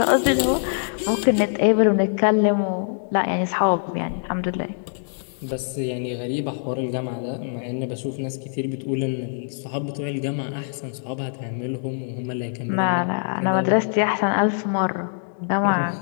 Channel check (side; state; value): right; silent; digital silence